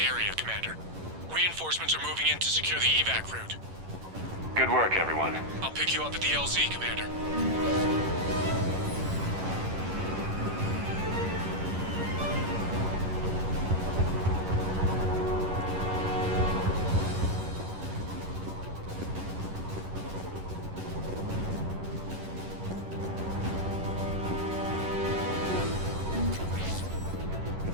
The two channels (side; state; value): left; late; 11 ms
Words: area, Commander. Reinforcements are moving in to secure the evac route. Good work, everyone. I'll pick you up at the LZ, Commander.